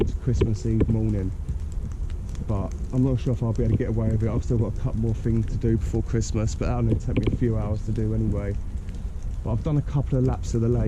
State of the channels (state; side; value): identical; both; correlation 1.00